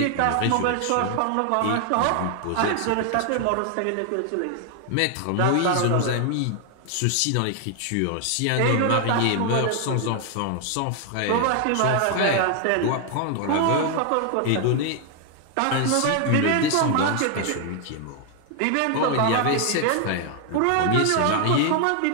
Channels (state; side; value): different; both; correlation 0.00